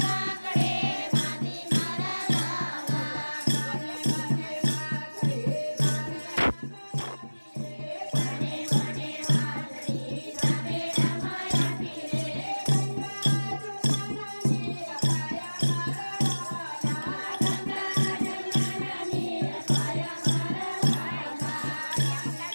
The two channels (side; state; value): both; inverted; correlation -1.00